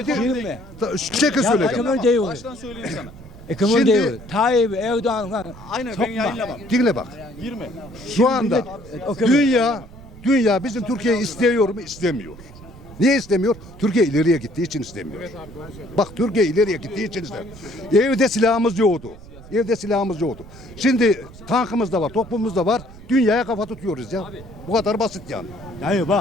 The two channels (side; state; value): right; noise; rumble, 18 dB below the sound